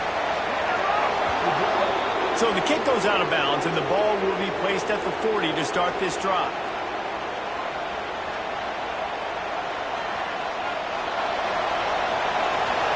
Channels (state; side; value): identical; both; correlation 1.00